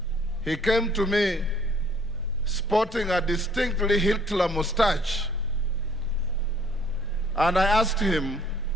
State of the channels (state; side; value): normal; both; correlation 0.60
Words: He came to me sporting a distinctly Hitler mustache. And I asked him,